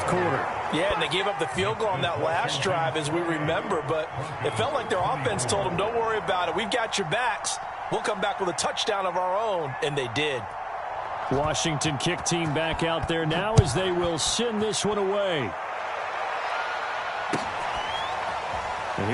quarter. Yeah, and they gave up the field goal on that last drive, as we remember, but it felt like their offense told them, don't worry about it. We've got your backs. We'll come back with a touchdown of our own, and they did. Washington kick team back out there now as they will send this one away. And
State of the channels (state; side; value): identical; both; correlation 1.00